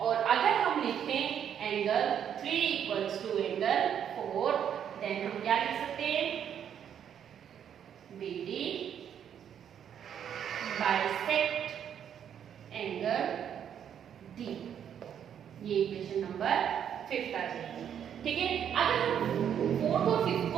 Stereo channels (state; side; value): quieter; left; 8.9 dB